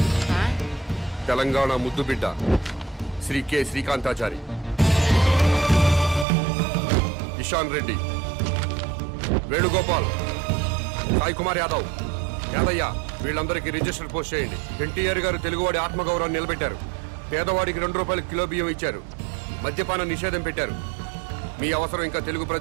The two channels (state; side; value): drops out; left; at 6.2 s